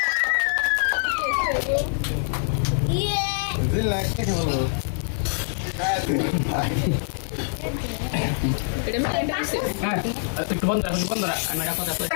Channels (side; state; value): right; silent; digital silence